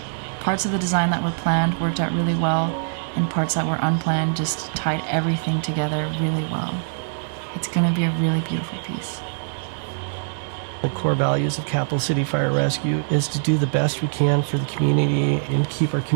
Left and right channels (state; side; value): silent; left; digital silence